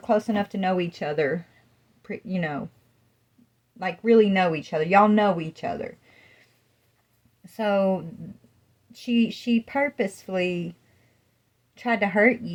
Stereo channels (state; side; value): identical; both; correlation 1.00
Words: enough to know each other, like really know each other. Y'all know each other. So she purposefully tried to hurt